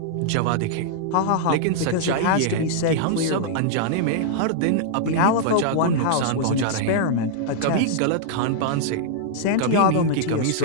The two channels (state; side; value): different; both; correlation -0.01